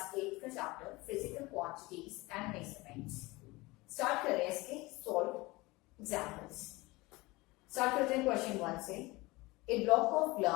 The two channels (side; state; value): right; quieter; 22.2 dB